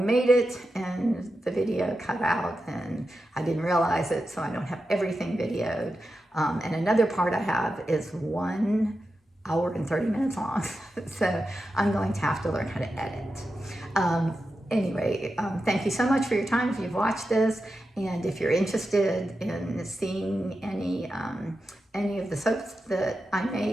it, and the video cut out, and I didn't realize it, so I don't have everything videoed. And another part I have is 1 hour and 30 minutes long, so I'm going to have to learn how to edit. Anyway, thank you so much for your time if you've watched this, and if you're interested in seeing any of the soaps that I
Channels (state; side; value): normal; both; correlation 0.90